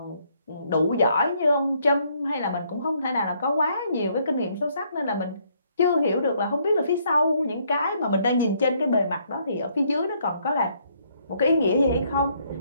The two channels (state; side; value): inverted; both; correlation -0.69